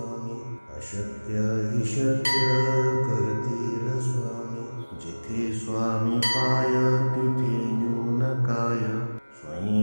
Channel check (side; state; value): both; inverted; correlation -1.00